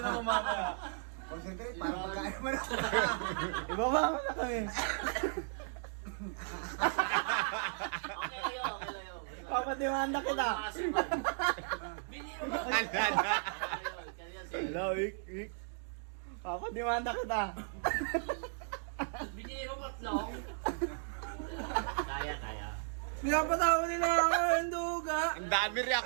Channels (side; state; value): left; silent; digital silence